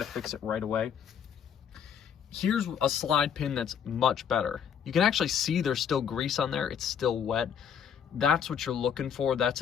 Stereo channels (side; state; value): right; quieter; 8.0 dB